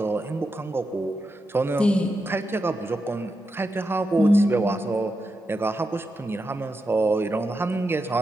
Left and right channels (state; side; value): normal; both; correlation 0.87